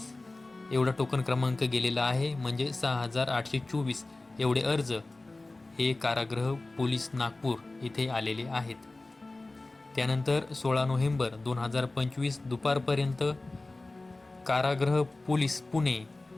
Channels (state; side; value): quieter; right; 3.0 dB